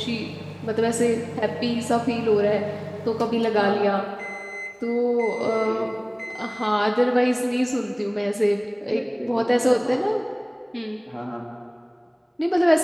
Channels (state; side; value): identical; both; correlation 1.00